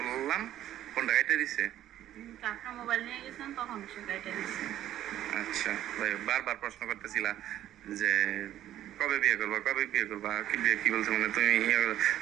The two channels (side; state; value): left; quieter; 12.4 dB